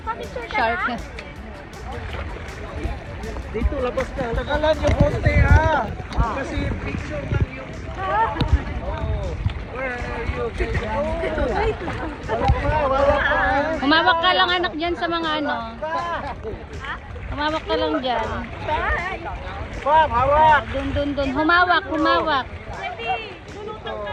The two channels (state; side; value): identical; both; correlation 1.00